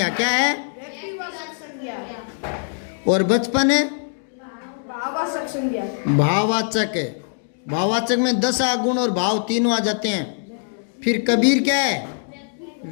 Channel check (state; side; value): silent; right; digital silence